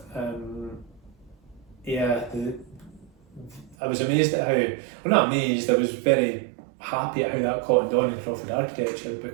I was amazed at not amazed, I was very happy at how that caught on in Crawford Architecture,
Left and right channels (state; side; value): drops out; left; at 3.8 s